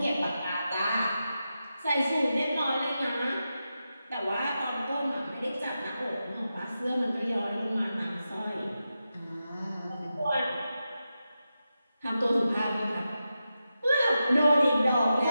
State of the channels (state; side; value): inverted; both; correlation -0.90